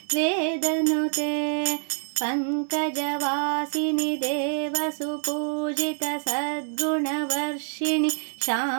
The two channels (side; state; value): left; silent; digital silence